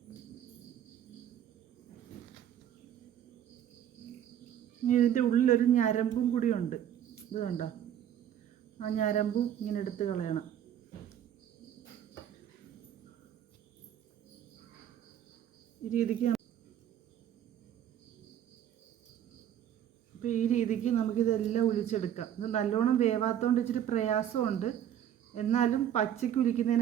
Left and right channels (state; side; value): quieter; left; 10.3 dB